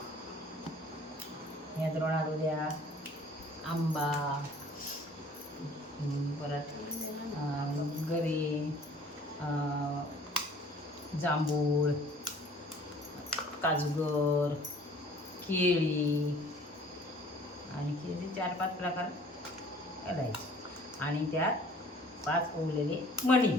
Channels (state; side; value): normal; both; correlation 0.52